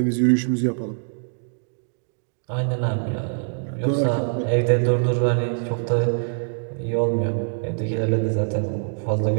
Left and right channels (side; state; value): left; silent; digital silence